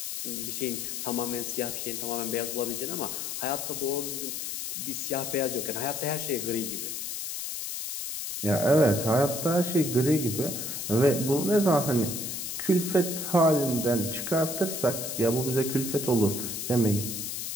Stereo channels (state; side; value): noise; left; hiss, 5 dB below the sound